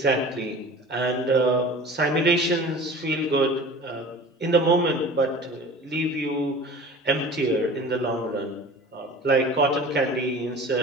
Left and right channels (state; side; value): normal; both; correlation 0.40